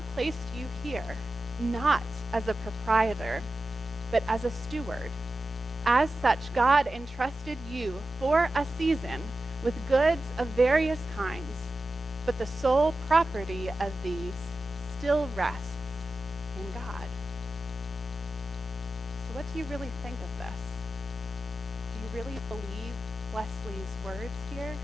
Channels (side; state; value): both; normal; correlation 0.93